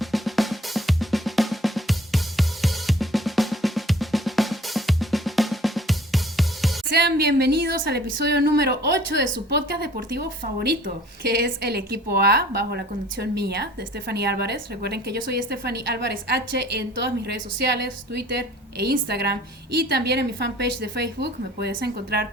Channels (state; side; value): normal; both; correlation 0.51